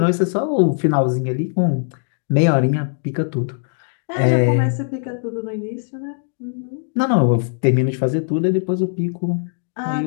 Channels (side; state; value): right; silent; 66 dB below the other